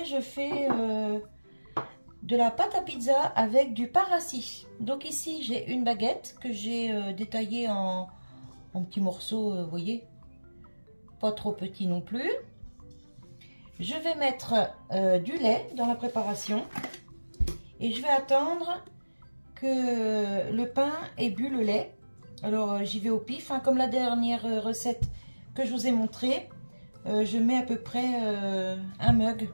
je fais de la pâte à pizza avec du pain rassis. Donc ici, j'ai une baguette que j'ai détaillée en petits morceaux, vous voyez, pas trop petits non plus. Je vais mettre du lait dans la préparation et je vais attendre que le pain ait bu le lait. Alors j'y vais au pif, hein, comme la dernière recette que je vous ai montré. Je mets à peu près un mug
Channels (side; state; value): both; inverted; correlation -1.00